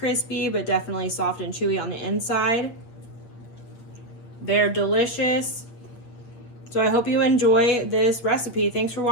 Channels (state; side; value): late; right; 8.6 ms